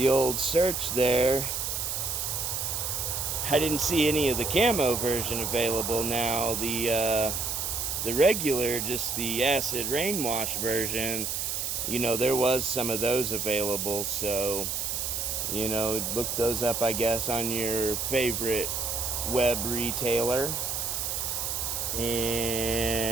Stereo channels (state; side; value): noise; right; hiss, 2 dB below the sound